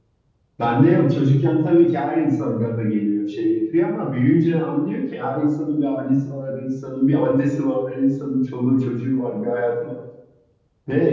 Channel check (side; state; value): both; identical; correlation 1.00